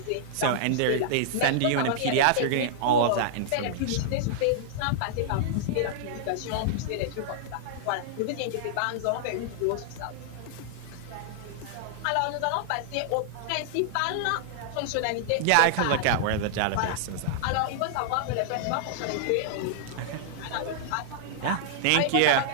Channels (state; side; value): different; both; correlation -0.01